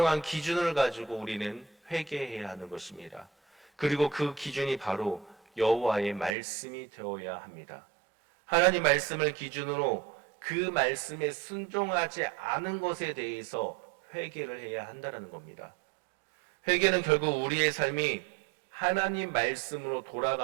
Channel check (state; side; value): drops out; left; at 6.4 s